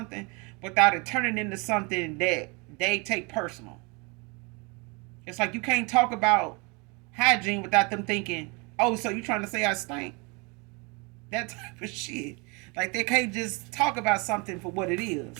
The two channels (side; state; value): left; quieter; 30.0 dB